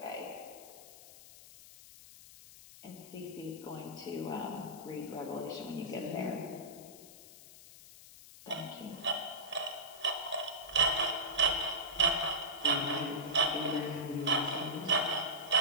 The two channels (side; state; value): left; noise; hiss, 18 dB below the sound